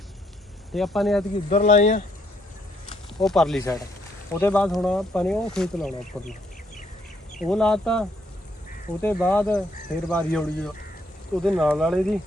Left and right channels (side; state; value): both; normal; correlation 0.71